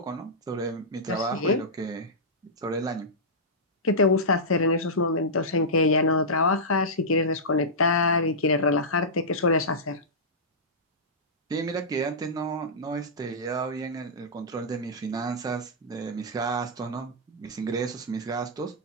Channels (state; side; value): normal; both; correlation -0.13